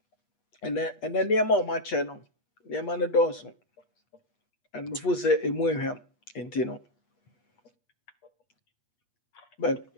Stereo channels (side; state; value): right; late; 8.3 ms